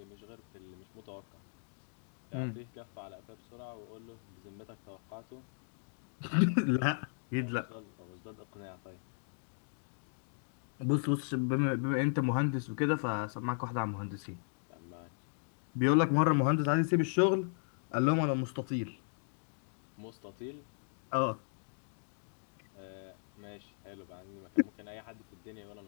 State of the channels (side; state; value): right; silent; digital silence